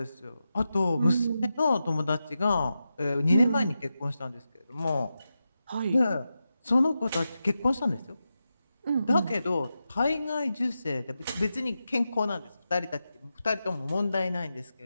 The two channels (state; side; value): inverted; both; correlation -0.90